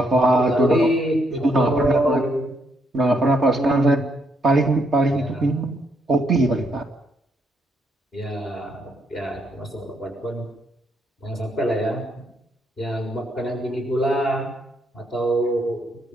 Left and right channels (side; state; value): both; normal; correlation 0.75